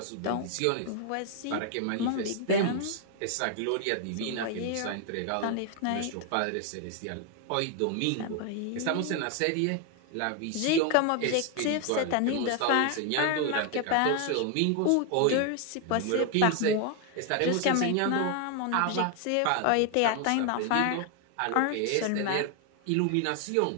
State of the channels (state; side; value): different; both; correlation 0.00